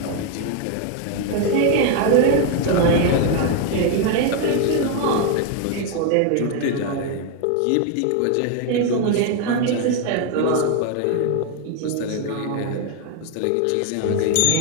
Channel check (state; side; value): different; both; correlation 0.01